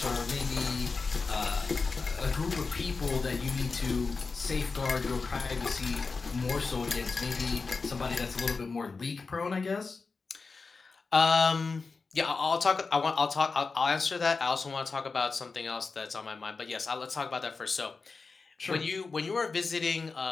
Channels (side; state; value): right; quieter; 4.4 dB